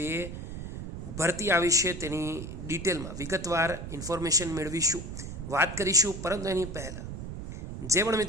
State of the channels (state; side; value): noise; right; rumble, 8 dB below the sound